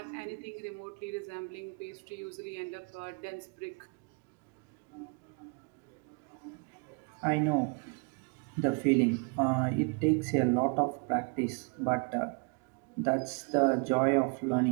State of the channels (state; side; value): quieter; left; 35.9 dB